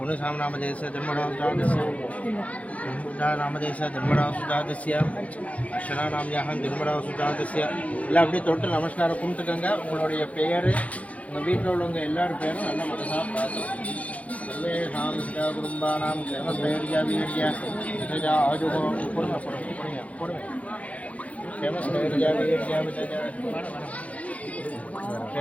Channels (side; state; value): right; late; 0.067 ms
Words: जन्मरावसुजातस्य जन्मरावसुजातस्य அர்ச்சனாநாம்யாகம் ஜன்மராவசுஜாதஸ்ய எல்லாம் அப்படியே தொட்டு நமஸ்காரம் கும்பிட்டுக்கங்க. உங்களுடைய பெயர், உங்கள் வீட்டில் உள்ளவங்க எல்லாரும் பேரும் நல்ல மனசாக பார்த்துக்கணும். சர்வேஷாம் சிதா குடும்பானாம் கேமஸ்தைர்யா வீர்யா விதஜா ஆஜுகோ பொறுமை பொறுமை கேமஸ்தைர்யா வீர்யா விதஜா